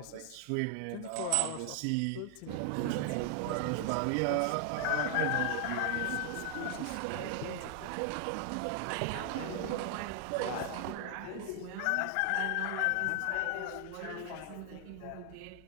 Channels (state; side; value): different; both; correlation 0.00